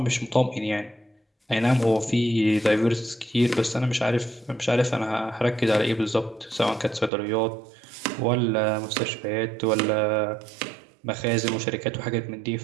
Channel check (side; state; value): left; drops out; at 7.1 s